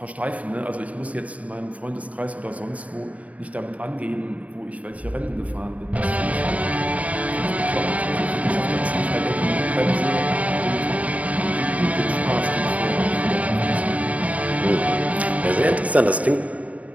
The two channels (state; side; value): late; left; 0.069 ms